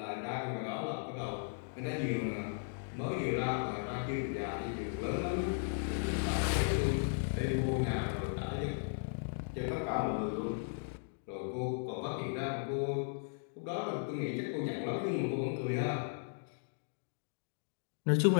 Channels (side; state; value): right; silent; digital silence